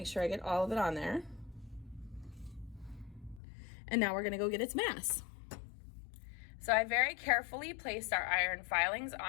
sure I get all of it on there. And now we're gonna go get its mass. So I very carefully placed our iron filings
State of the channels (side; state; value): right; drops out; at 3.4 s